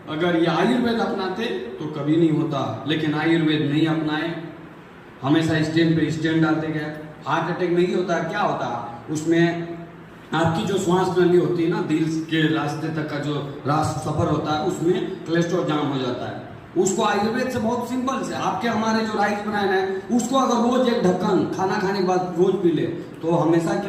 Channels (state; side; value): identical; both; correlation 1.00